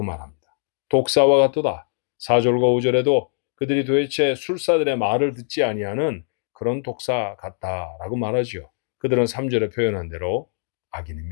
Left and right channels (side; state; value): right; silent; digital silence